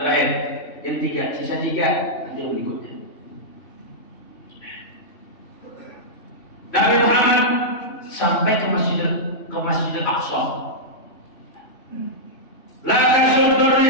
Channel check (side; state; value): right; late; 3.1 ms